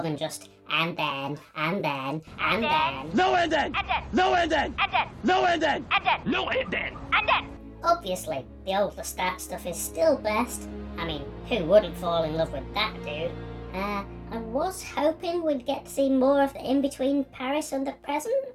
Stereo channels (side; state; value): both; identical; correlation 1.00